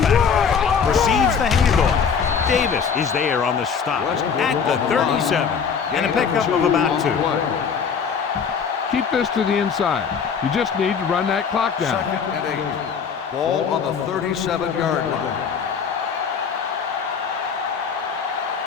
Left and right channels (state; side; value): quieter; right; 6.5 dB